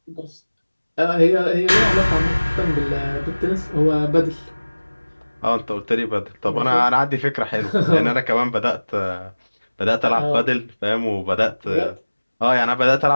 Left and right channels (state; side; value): inverted; both; correlation -1.00